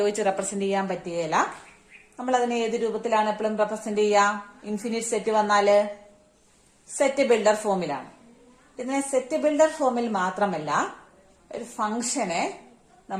റെപ്രസെന്റ് ചെയ്യാൻ പറ്റുകയില്ല. നമ്മൾ അതിനെ ഏത് രൂപത്തിലാണ് എപ്പോഴും റെപ്രസെന്റ് ചെയ്യുക? ഇൻഫിനിറ്റ് സെറ്റ് വന്നാല് സെറ്റ് ബിൽഡർ ഫോമിലാണ്. ഇതിനെ സെറ്റ് ബിൽഡർ ഫോമിൽ മാത്രമല്ല, ഒരു ഫംഗ്ഷനെ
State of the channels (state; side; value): identical; both; correlation 1.00